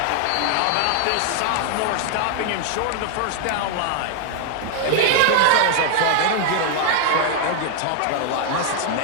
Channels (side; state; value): both; different; correlation 0.00